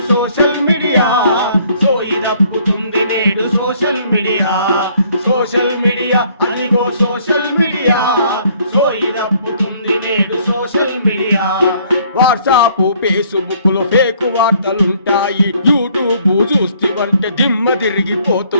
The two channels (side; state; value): both; inverted; correlation -0.62